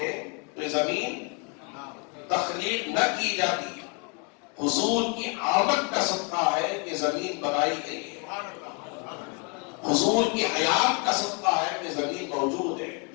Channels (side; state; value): right; quieter; 35.1 dB